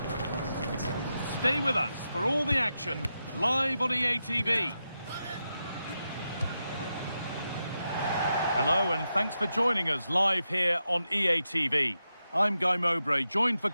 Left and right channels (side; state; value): both; inverted; correlation -0.88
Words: Stay with us for all the action, live on EA TV. Hello and thanks for joining us live here on EA TV. I'm Guy Mowbray, joined for